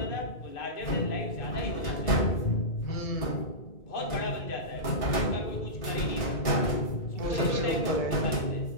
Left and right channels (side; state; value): right; late; 2.3 ms